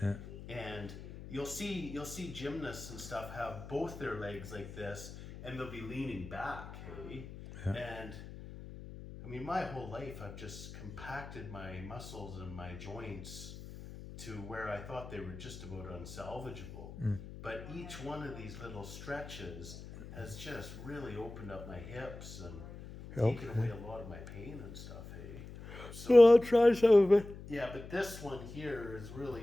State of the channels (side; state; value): left; noise; hum, 13 dB below the sound